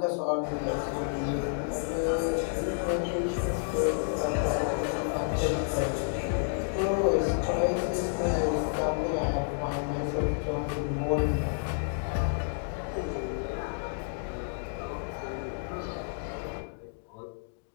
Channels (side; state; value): right; silent; digital silence